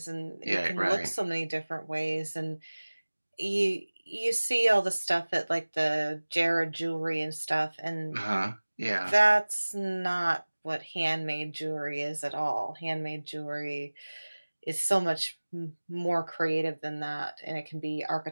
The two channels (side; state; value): both; inverted; correlation -1.00